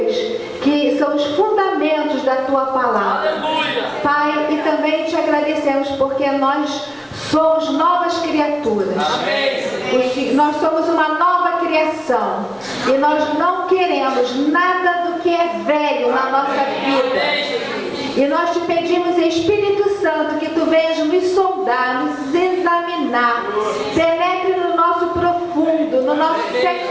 que são os fundamentos da Tua Palavra. Aleluia. Pai, e também te agradecemos porque nós somos novas criaturas. Amém. Nós somos uma nova criação e nós não queremos nada do que é velho na nossa vida. E nós te pedimos, Espírito Santo, que Tu venhas nos soldar, nos examinar, penetre no nosso profundo, no nosso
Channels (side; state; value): both; identical; correlation 1.00